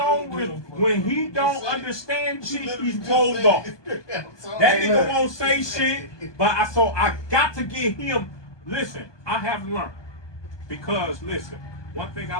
don't understand shit, he's closed off. That nigga won't say shit, but I got to get him. Listen, I have learned, because listen, one thing I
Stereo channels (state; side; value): late; right; 1.2 ms